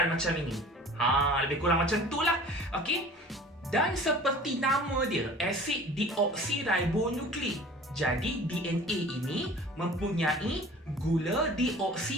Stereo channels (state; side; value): normal; both; correlation 0.44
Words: macam ini. Lebih kurang macam itulah. Okey. Dan seperti nama dia, asid deoksiribonukleik. Jadi DNA ini mempunyai gula